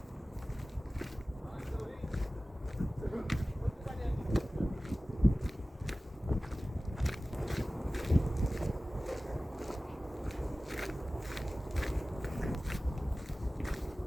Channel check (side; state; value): both; normal; correlation 0.97